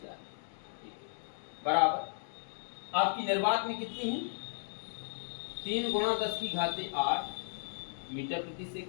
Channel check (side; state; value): right; silent; digital silence